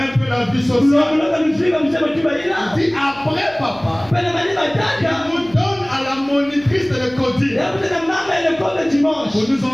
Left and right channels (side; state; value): left; noise; hum, 25 dB below the sound